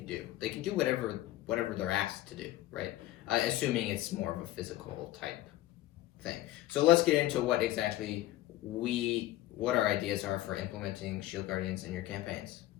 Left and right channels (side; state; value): right; quieter; 15.6 dB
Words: do. They can do whatever they're asked to do, right? Assuming it's more of a physical type thing. So let's get into what exactly what our ideas are for implementing shield guardians in your campaigns.